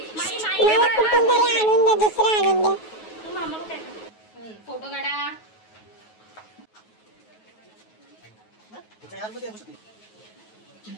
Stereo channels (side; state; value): right; late; 9.3 ms